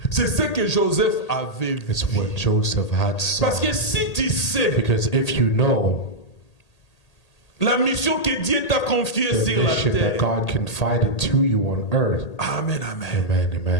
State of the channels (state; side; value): late; right; 1.8 ms